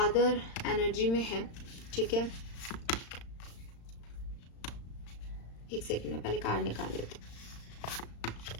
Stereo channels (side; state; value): right; late; 35 ms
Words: एनर्जी में है, ठीक है। एक सेकंड में पहले कार्ड निकाल लेते।